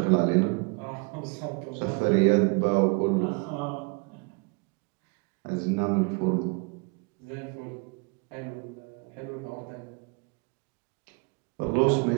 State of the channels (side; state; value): left; quieter; 31.4 dB